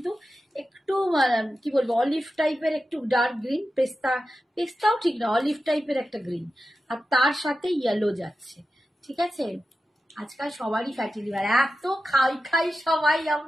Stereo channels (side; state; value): both; normal; correlation 0.92